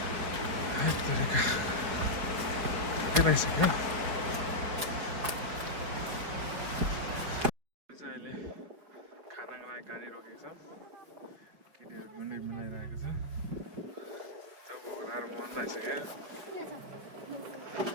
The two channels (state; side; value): late; left; 5.2 ms